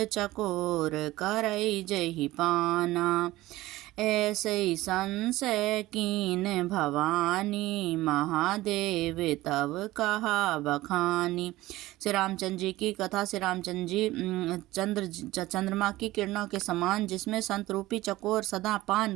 चकोर करई जहि पाना। ऐसे संशय कीन भवानी, महादेव तब कहा बखानी। श्री रामचंद्र जी की कथा। श्री रामचंद्र जी चंद्रमा की किरणों के समान, जिसमें संत रूपी चकोर सदा पान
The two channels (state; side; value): quieter; left; 17.6 dB